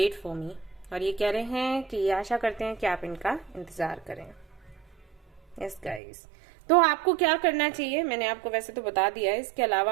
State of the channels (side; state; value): left; drops out; at 6.0 s